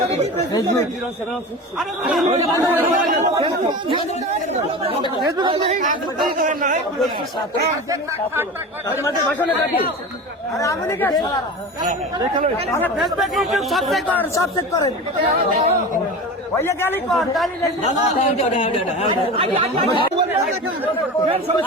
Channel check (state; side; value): normal; both; correlation 0.30